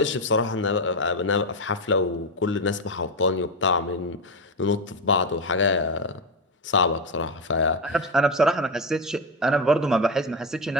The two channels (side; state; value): both; normal; correlation 0.13